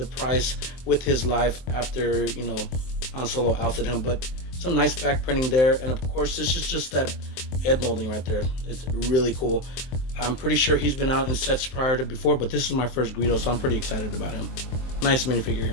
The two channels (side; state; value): right; late; 23 ms